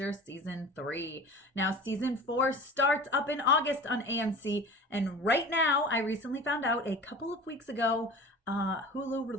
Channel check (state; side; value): normal; both; correlation 0.39